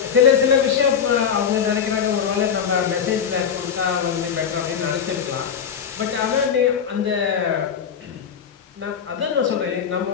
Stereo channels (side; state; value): right; quieter; 7.4 dB